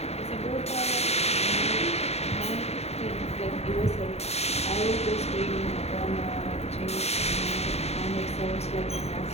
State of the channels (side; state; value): right; late; 0.31 ms